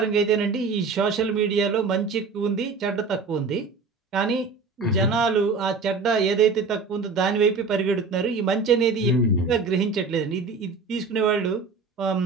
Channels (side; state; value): left; quieter; 4.5 dB